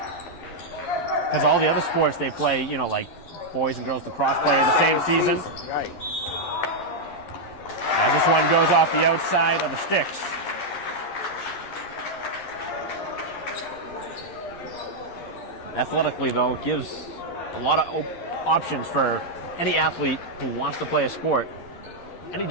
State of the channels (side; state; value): right; late; 11 ms